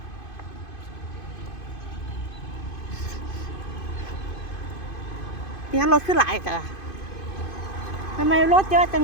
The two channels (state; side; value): late; right; 2.5 ms